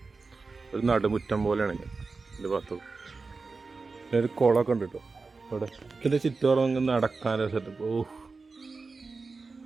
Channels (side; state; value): left; quieter; 4.1 dB